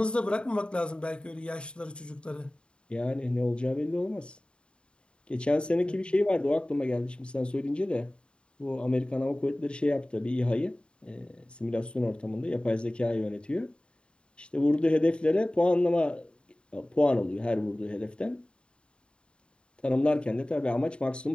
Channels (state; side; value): late; right; 0.053 ms